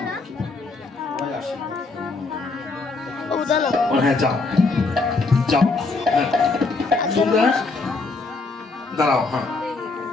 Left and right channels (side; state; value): right; quieter; 3.7 dB